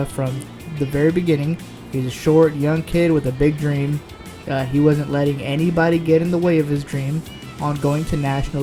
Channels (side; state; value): both; identical; correlation 1.00